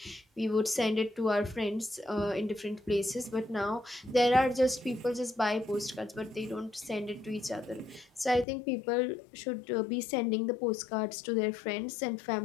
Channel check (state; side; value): drops out; right; at 8.5 s